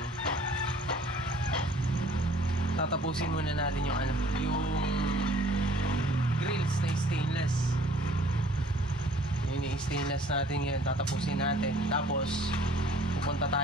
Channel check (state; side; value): normal; both; correlation 0.55